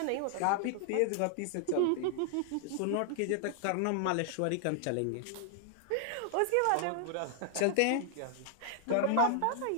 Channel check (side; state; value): both; different; correlation 0.00